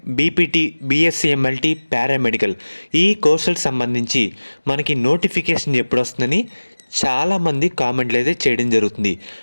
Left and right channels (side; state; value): both; inverted; correlation -1.00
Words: BPT, BSc MLT, paramedical ఈ కోర్సులకు సంబంధించి మనకి నోటిఫికేషన్ ఎప్పుడు వస్తుందని చాలామంది కామెంట్లు అయితే చేయడం జరుగుతుంది.